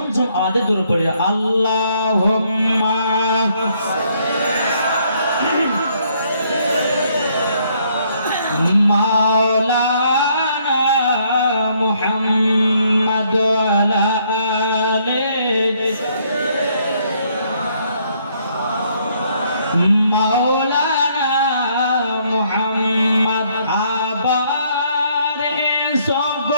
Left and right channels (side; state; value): both; inverted; correlation -0.68